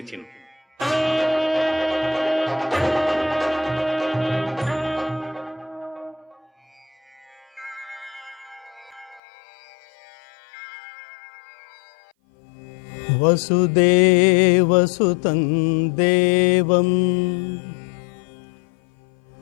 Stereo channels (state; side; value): drops out; right; at 9.2 s